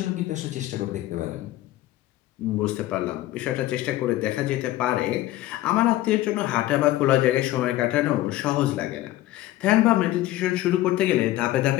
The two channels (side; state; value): right; quieter; 15.5 dB